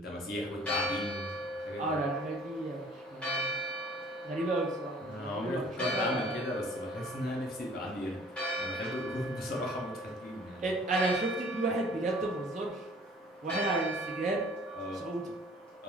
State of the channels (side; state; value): both; normal; correlation 0.52